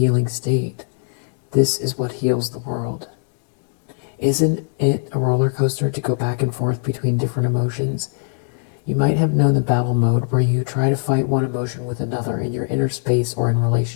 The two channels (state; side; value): silent; right; digital silence